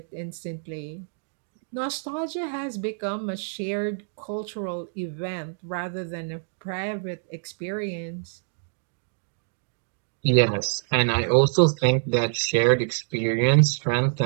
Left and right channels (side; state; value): left; silent; digital silence